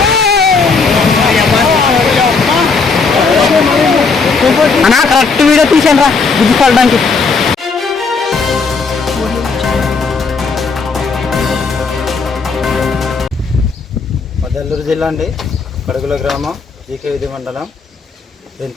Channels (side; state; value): right; quieter; 4.6 dB